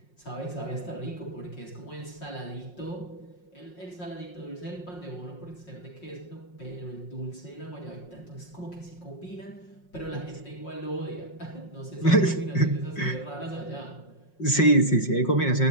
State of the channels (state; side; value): late; right; 5.5 ms